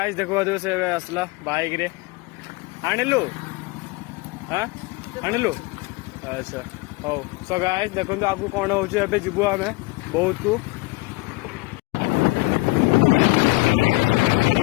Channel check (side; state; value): right; quieter; 23.3 dB